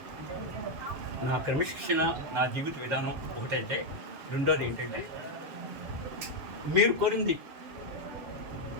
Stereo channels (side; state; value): left; late; 7.1 ms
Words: నా క్రమశిక్షణ, నా జీవిత విధానం ఒకటైతే, రెండోది ఏంటంటే మీరు కోరింది